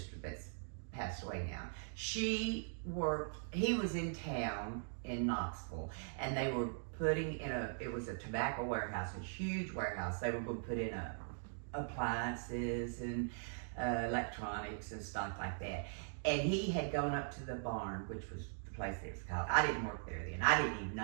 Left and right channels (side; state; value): left; silent; digital silence